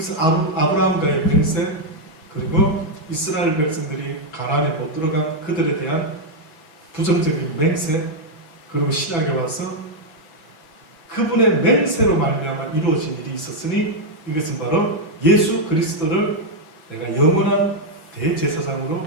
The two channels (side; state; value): right; late; 6.0 ms